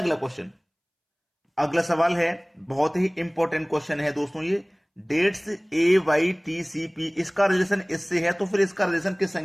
अगला क्वेश्चन। अगला सवाल है, बहुत ही इंपॉर्टेंट क्वेश्चन है दोस्तों ये। डेट्स AYTCP, इसका रिलेशन इससे है, तो फिर इसका रिलेशन किस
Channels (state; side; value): identical; both; correlation 1.00